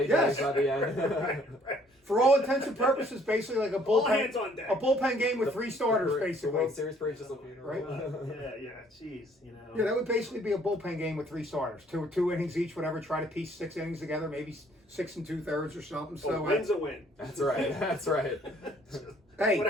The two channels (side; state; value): both; normal; correlation 0.61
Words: Yes. does by the end. right. For all intents and purposes, basically like a All hands on deck. bullpen game with 3 starters, The basically. World Series for just a funeral. Right? Yeah, jeez, Yeah, that would basically be a bullpen game with 3 starters, two innings each, whatever. Try to piece 6 innings together, maybe 6 2/3 or something. So a win's a win. That's right. That's right. hey,